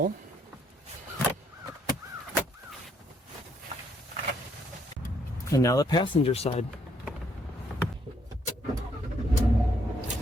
And now the passenger side.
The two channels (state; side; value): normal; both; correlation 0.70